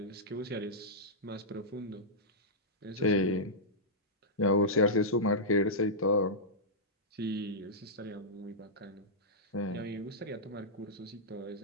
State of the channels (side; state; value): both; normal; correlation -0.13